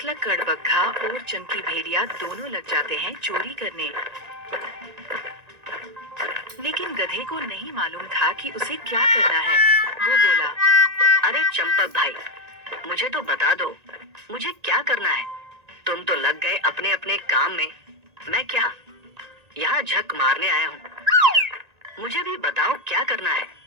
कड़बग्घा और चंकी भेड़िया दोनों लग जाते हैं चोरी करने। लेकिन गधे को नहीं मालूम था कि उसे क्या करना है। वो बोला, अरे चंपक भाई, मुझे तो बता दो, मुझे क्या करना है? तुम तो लग गए अपने अपने काम में। मैं क्या यहाँ झक मारने आया हूँ? मुझे भी बताओ क्या करना है,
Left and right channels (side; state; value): left; late; 1.9 ms